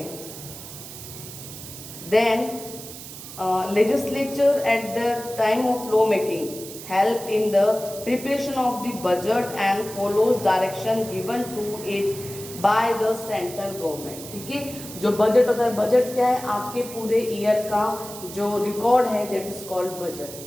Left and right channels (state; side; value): noise; right; hiss, 13 dB below the sound